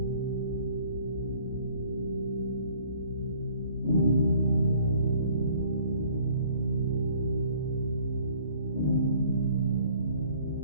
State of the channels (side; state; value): both; inverted; correlation -0.57